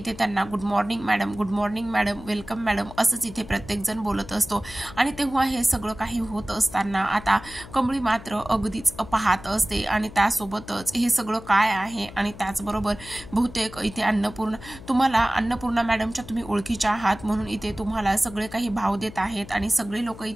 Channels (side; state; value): left; noise; hum, 16 dB below the sound